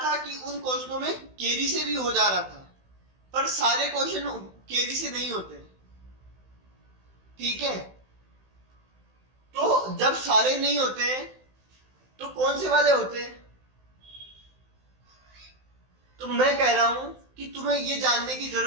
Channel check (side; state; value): left; late; 16 ms